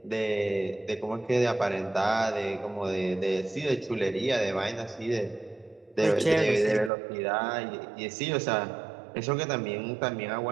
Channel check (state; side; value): drops out; left; at 6.9 s